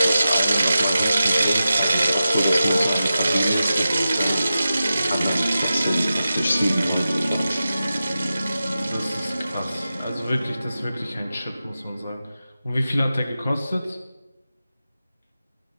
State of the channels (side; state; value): both; inverted; correlation -0.92